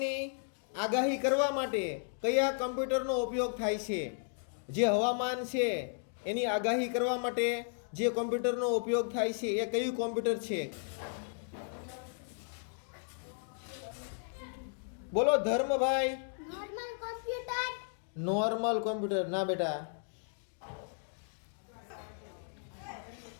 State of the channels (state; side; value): silent; right; digital silence